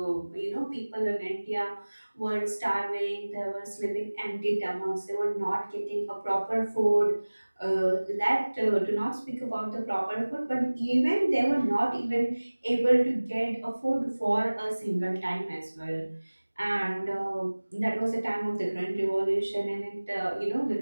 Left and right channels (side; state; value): both; inverted; correlation -1.00